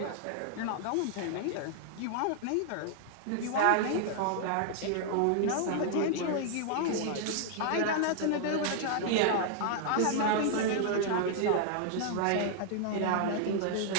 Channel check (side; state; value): both; different; correlation 0.00